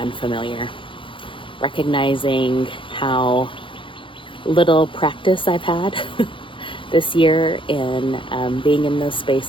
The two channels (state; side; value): late; right; 0.25 ms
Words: Recognizing how little practice I've had this year in being in those